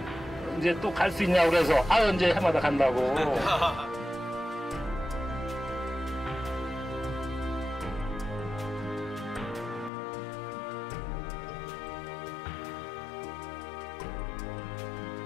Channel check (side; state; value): right; drops out; at 9.9 s